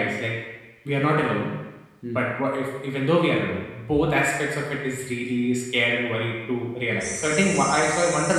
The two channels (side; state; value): both; identical; correlation 1.00